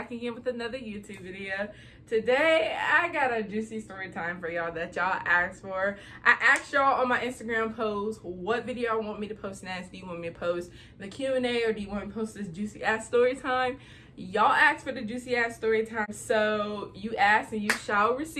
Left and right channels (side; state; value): both; identical; correlation 1.00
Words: again with another YouTube video. Today, I got a juicy story time for y'all that y'all asked for. I asked y'all on my Instagram post what video I want me to post next. Do you want me to post the Q&A or do you want me to post this juicy ass story time? Y'all asked for the juicy ass story time, so you asked and you shall